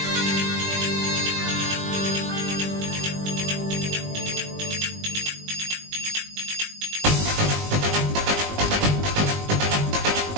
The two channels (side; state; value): left; late; 20 ms